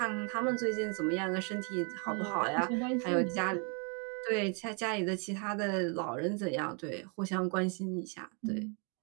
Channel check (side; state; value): left; quieter; 36.8 dB